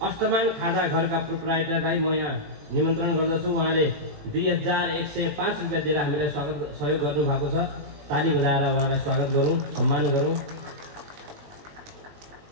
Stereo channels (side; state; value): left; late; 21 ms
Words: अष्टमान खाजा घरका प्रोप्राइटरलाई म यहाँ निमन्त्रण गर्दछु। उहाँले 2105 रुपियाँ दिएर हामीलाई सहयोग गर्नुभएको छ। ताली बजाएर उहाँलाई स्वागत गरौँ, सम्मान गरौँ।